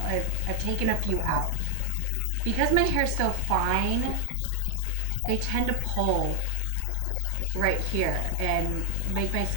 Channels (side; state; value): both; different; correlation 0.00